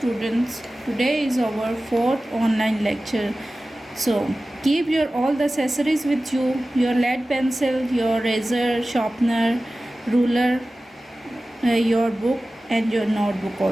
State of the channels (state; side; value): normal; both; correlation 0.96